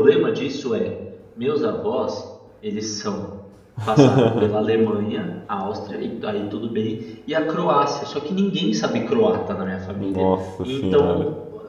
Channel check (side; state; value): both; identical; correlation 1.00